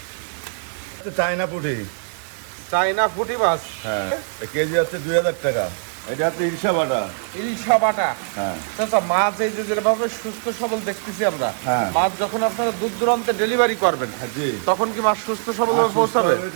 চায়না পুঁটি। চায়না পুঁটি মাছ। হ্যাঁ, কেজি হচ্ছে 2000 টাকা। এটা হচ্ছে ইলিশা বাটা। ইলিশা বাটা। হ্যাঁ। আচ্ছা, মাছ এই যে যেভাবে সুস্থ সবল দেখতেছি আমরা, হ্যাঁ। মাছ যখন আপনারা দূর দূরান্তে ডেলিভারি করবেন, হ্যাঁ জি। তখন কি মাছ সুস্থ সবল আর সুস্থ পৌঁছাবে? হবে,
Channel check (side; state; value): left; silent; digital silence